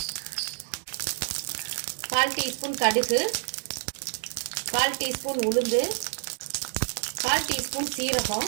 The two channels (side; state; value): left; silent; 59 dB below the other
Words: 1/4 டீஸ்பூன் கடுகு, 1/4 டீஸ்பூன் உளுந்து, 1/4 டீஸ்பூன்